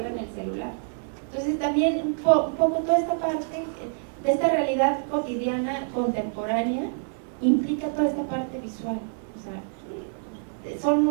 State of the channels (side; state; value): left; silent; 61 dB below the other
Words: el celular. Entonces, también un poco toda esta parte de esta realidad cotidiana, contemporánea, implica toda esta parte visual. O sea,